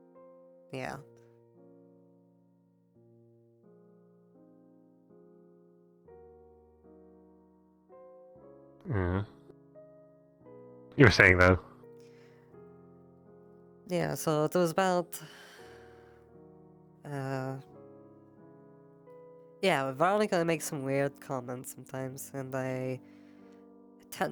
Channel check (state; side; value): identical; both; correlation 1.00